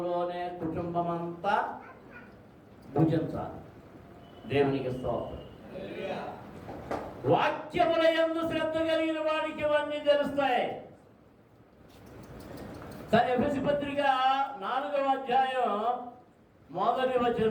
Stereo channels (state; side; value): identical; both; correlation 1.00